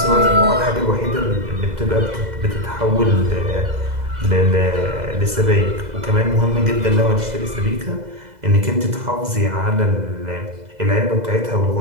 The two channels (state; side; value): late; left; 2.0 ms